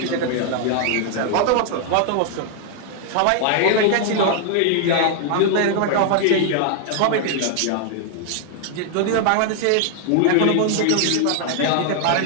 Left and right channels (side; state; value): both; different; correlation 0.00